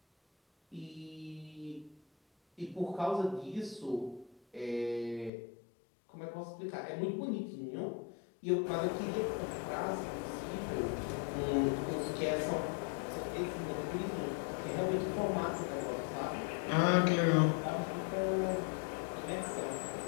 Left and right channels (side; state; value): right; drops out; at 5.3 s